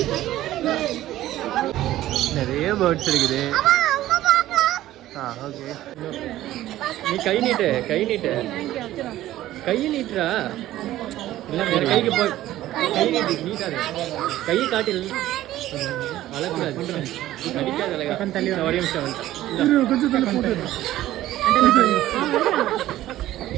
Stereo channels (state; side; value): quieter; left; 14.5 dB